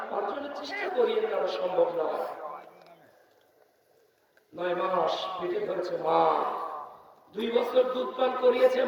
অর্জনের চেষ্টা করিয়ে নেওয়া সম্ভব নয়। 9 মাস পেটে ধরেছে মা, 2 বছর দুধ পান করিয়েছে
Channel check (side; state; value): both; identical; correlation 1.00